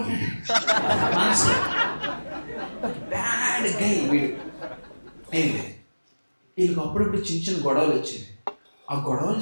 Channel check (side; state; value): both; inverted; correlation -1.00